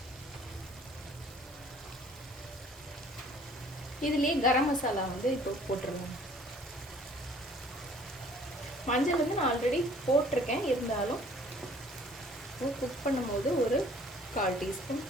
இதுலேயே கரம் மசாலா வந்து இப்போ போட்டுருவோம். மஞ்சள் வந்து நான் ஆல்ரெடி போட்டிருக்கேன், இருந்தாலும் குக் பண்ணும்போது ஒரு 1/4 டீஸ்பூன்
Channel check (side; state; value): both; normal; correlation 0.55